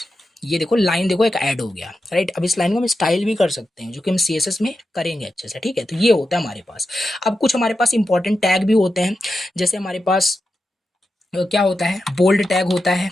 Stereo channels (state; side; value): normal; both; correlation 0.90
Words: ये देखो लाइन, देखो एक ऐड हो गया, राइट। अब इस लाइन को हम स्टाइल भी कर सकते हैं, जो कि हम CSS में करेंगे अच्छे से, ठीक है। तो ये होता है हमारे पास। अब कुछ हमारे पास इंपॉर्टेंट टैग भी होते हैं, जैसे हमारे पास क्या होता है, बोल्ड टैग होता है,